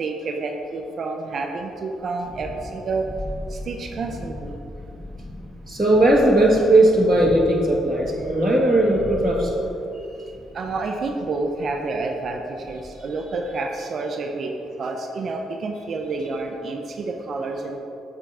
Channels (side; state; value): both; normal; correlation 0.76